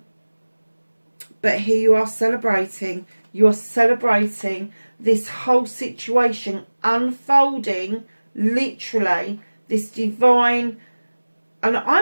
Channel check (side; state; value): both; inverted; correlation -1.00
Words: here you are celebrating. You're celebrating this whole situation unfolding, literally, this divine, and